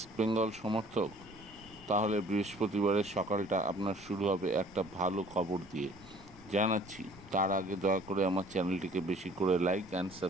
সমর্থক? তাহলে বৃহস্পতিবারের সকালটা আপনার শুরু হবে একটা ভালো খবর দিয়ে জানাচ্ছি। তার আগে দয়া করে আমার চ্যানেলটিকে বেশি করে লাইক অ্যান্ড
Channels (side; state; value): right; noise; rumble, 24 dB below the sound